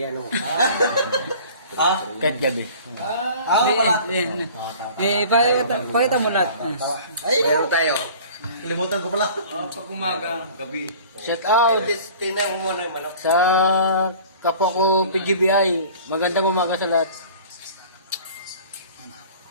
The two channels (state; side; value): inverted; both; correlation -0.45